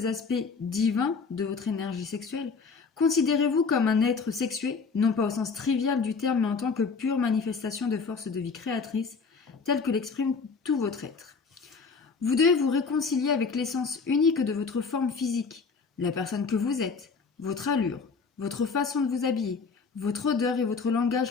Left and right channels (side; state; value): right; quieter; 5.0 dB